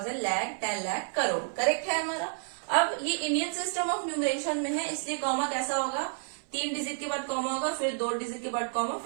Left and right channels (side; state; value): left; silent; 58 dB below the other